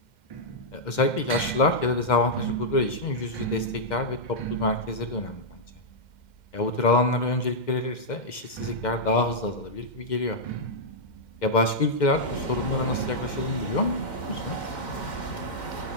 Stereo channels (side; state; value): right; late; 2.1 ms